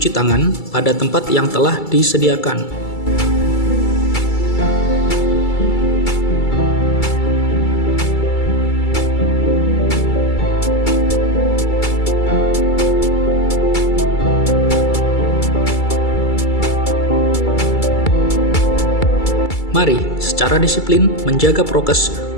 tangan pada tempat yang telah disediakan. Mari secara disiplin menjaga prokes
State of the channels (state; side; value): late; right; 2.3 ms